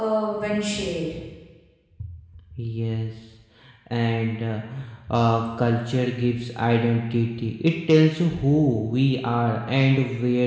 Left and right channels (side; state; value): both; identical; correlation 1.00